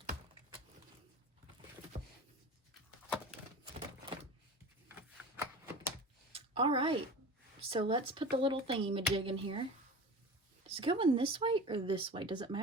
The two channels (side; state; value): both; normal; correlation 0.34